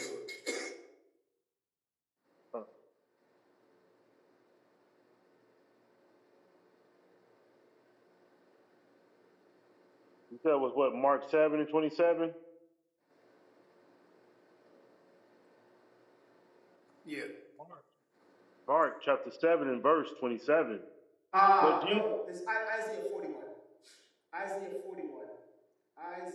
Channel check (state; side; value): identical; both; correlation 1.00